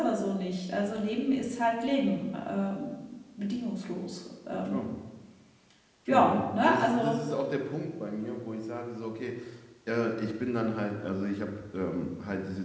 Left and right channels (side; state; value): both; identical; correlation 1.00